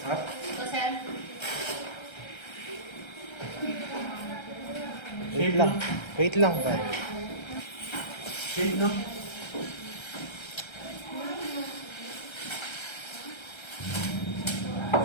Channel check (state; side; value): late; right; 1.3 ms